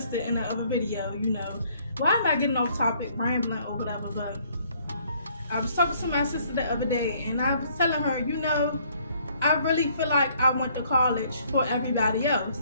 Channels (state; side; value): inverted; both; correlation -0.63